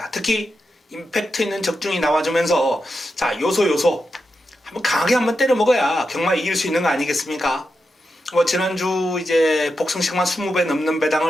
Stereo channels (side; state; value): both; normal; correlation 0.88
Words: 특히 임팩트 있는 적중이 나와주면서 자 요소 한번 강하게 한번 때려 먹어야 경마 이길 수 있는 거 아니겠습니까? 지난주 이제 복승식만 20배 넘는